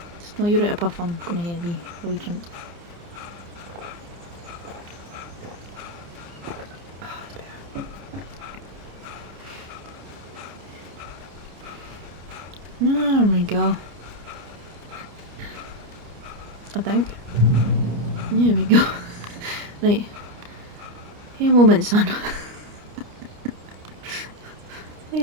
Just know you're out of puff, I'm gonna hear a wee drink. Oh, that's better. There we go. I think. There we go. Right. Hey, a moment, son.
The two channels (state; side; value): late; left; 29 ms